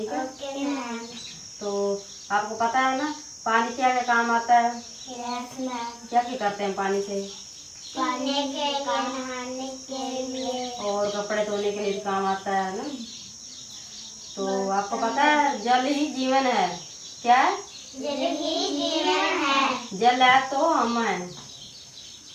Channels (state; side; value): identical; both; correlation 1.00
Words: है? Okay ma'am. तो आपको पता है ना पानी क्या क्या काम आता है? Yes ma'am. क्या क्या करते हैं पानी से? पीने के लिए, नहाने के लिए और कपड़े धोने के लिए भी काम आता है ना। तो आपको पता है जल ही जीवन है। क्या है? जल ही जीवन है। जल है तो हम हैं,